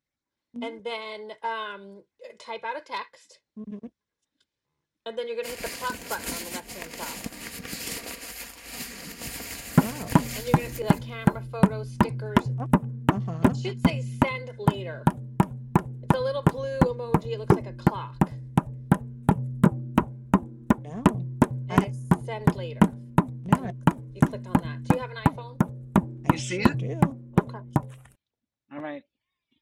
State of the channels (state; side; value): identical; both; correlation 1.00